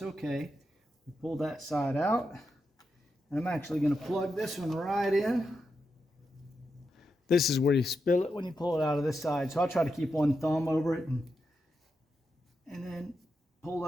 okay. We pull that side out. And I'm actually going to plug this one right in. This is where you spill it when you pull it out of this side. So I'll try to keep one thumb over it and then pull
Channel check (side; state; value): both; normal; correlation 0.86